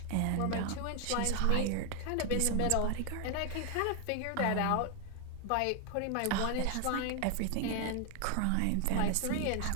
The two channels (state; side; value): different; both; correlation 0.01